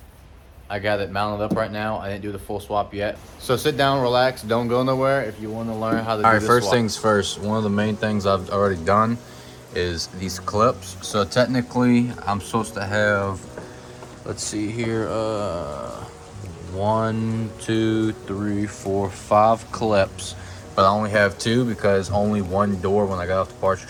I got it mounted up right now. I didn't do the full swap yet. So sit down, relax, don't go nowhere if you want to learn how to do this swap. Alright, first things first, one of the main things I've already done is these clips. So technically I'm supposed to have, let's see here, 1, 2, 3, 4, 5 clips. But I only have 2 because only one door when I got off the parts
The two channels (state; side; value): identical; both; correlation 1.00